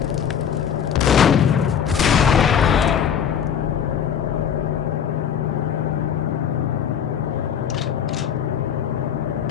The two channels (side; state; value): right; quieter; 8.3 dB